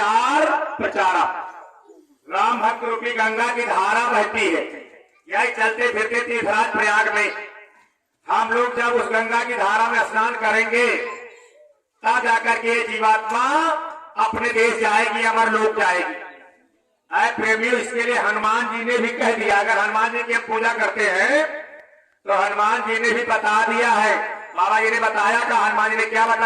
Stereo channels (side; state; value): both; identical; correlation 1.00